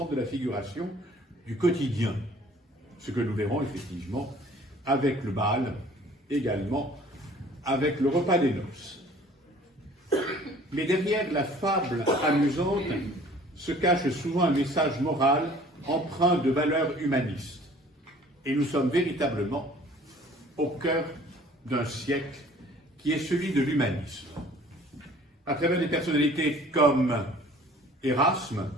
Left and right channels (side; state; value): both; normal; correlation 0.52